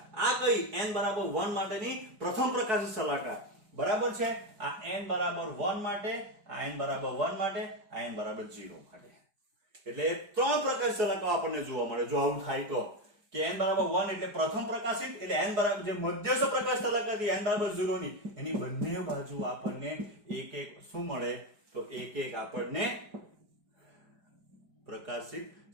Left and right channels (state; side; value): late; left; 5.0 ms